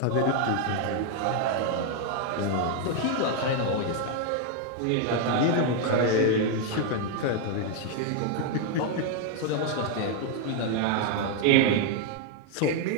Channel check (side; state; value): both; different; correlation 0.00